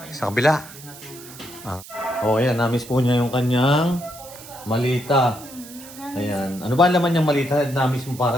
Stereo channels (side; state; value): right; noise; hiss, 17 dB below the sound